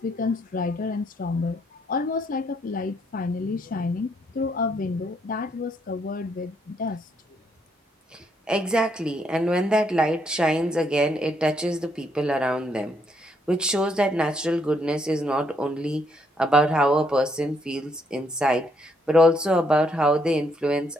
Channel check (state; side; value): normal; both; correlation 0.72